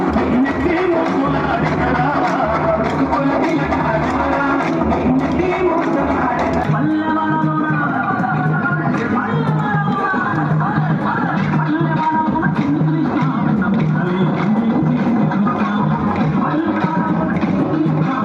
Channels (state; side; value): identical; both; correlation 1.00